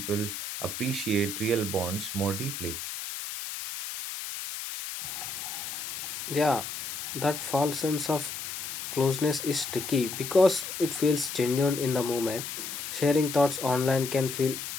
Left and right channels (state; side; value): noise; left; hiss, 6 dB below the sound